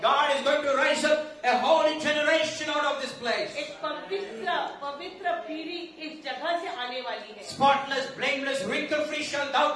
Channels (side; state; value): both; identical; correlation 1.00